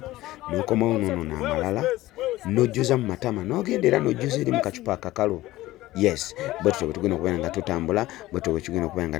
n'okomawo nono n'amalala n'ojjuza mu matama n'ogenda era n'ojjuza eri mu kacupa akakalu. Yes, bottle tugenda okubeera nga tutambula bottle tugenda okubeera nga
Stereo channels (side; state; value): right; quieter; 16.9 dB